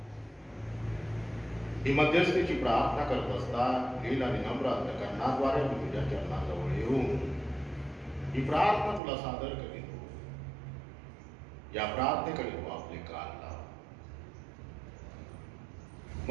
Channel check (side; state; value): left; drops out; at 9.0 s